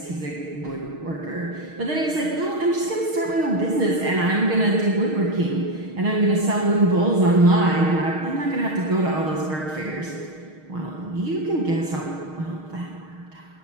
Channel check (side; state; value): left; late; 6.4 ms